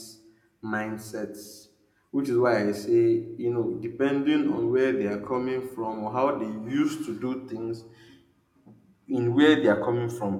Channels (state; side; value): identical; both; correlation 1.00